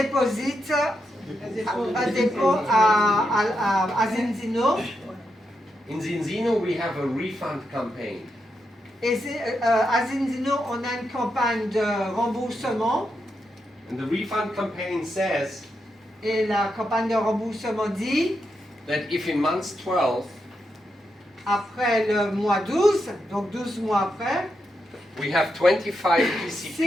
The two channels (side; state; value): both; normal; correlation 0.84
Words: à Zinzino. In Zinzino we have a refund campaign. Et à Zinzino, on a une campagne de remboursement. And the refund campaign says Et la campagne de remboursement dit, that if in month 12 après le mois 12, donc 12 mois après, we have 25